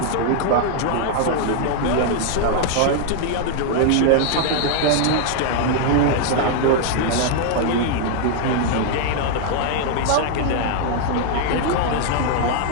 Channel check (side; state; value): both; different; correlation 0.00